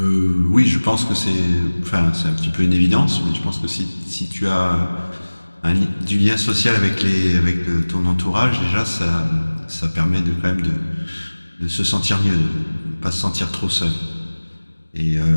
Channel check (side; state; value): both; inverted; correlation -1.00